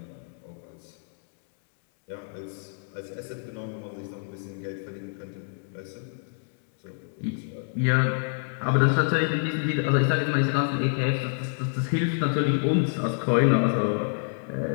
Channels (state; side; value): silent; right; digital silence